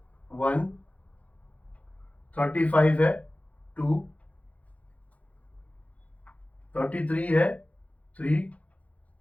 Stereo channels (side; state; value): right; late; 0.067 ms